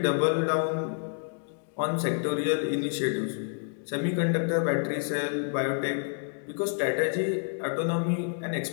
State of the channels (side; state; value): right; silent; 59 dB below the other